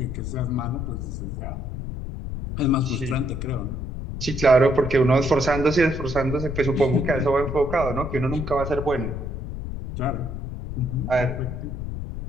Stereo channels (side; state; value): left; noise; rumble, 6 dB below the sound